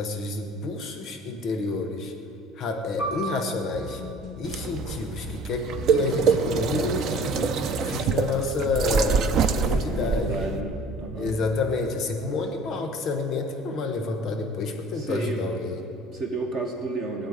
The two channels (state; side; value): normal; both; correlation 0.47